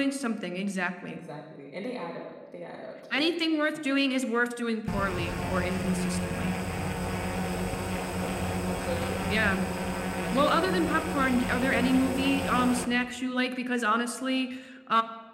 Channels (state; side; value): identical; both; correlation 1.00